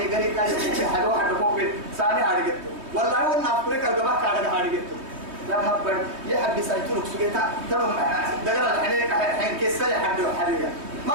قري كان حد واحد فوق ثاني هارجته والله هو نافريك القبل كان هارجته لا هبل يحب يسايتونك سجيتا ترى دقر الحين حين كيسة حد حرية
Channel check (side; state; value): left; late; 3.2 ms